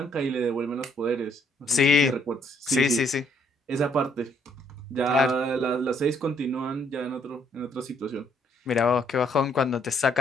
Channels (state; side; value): normal; both; correlation 0.68